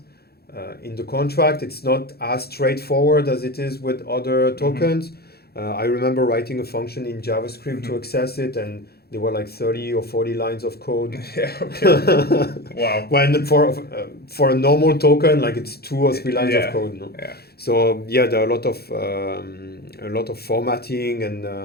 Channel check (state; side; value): late; right; 0.46 ms